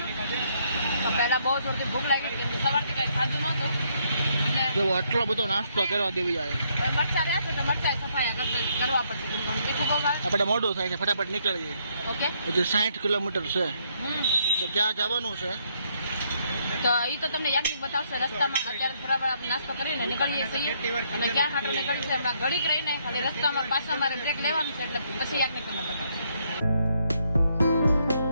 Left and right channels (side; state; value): both; inverted; correlation -0.72